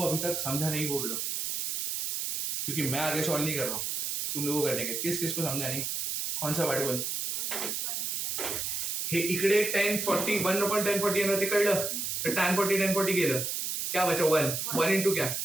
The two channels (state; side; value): noise; right; hiss, 2 dB below the sound